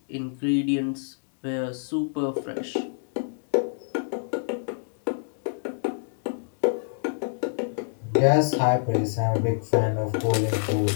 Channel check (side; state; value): right; silent; digital silence